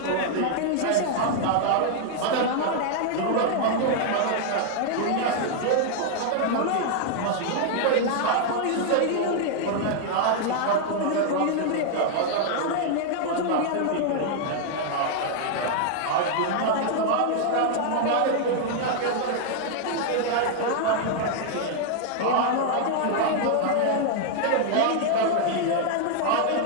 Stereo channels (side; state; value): both; different; correlation 0.00